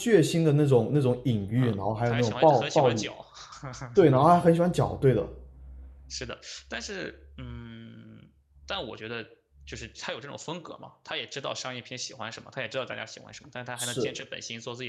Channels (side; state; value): both; identical; correlation 1.00